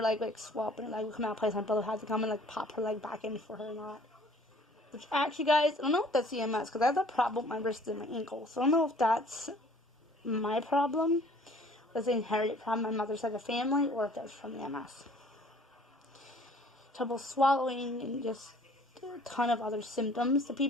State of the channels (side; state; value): both; normal; correlation 0.54